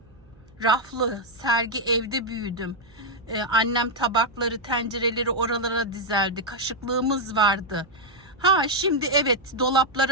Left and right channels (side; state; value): right; noise; hum, 28 dB below the sound